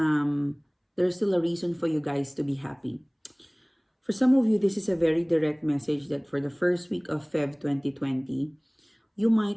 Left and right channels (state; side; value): identical; both; correlation 1.00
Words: there's still a reason for you guys to be happy. For some of you, this is a very direct message that for the first week of Feb 2020, you